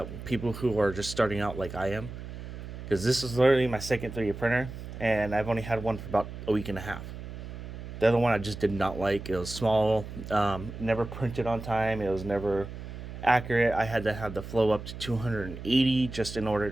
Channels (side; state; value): right; noise; hum, 10 dB below the sound